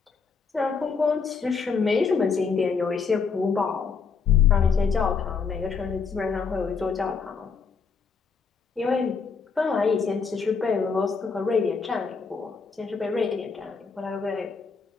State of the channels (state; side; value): quieter; right; 5.4 dB